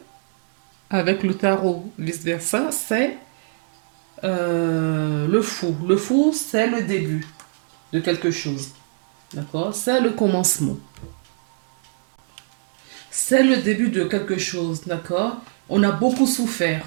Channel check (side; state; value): left; silent; digital silence